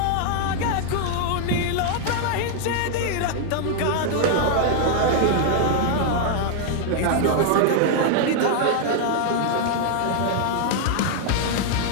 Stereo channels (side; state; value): both; different; correlation 0.00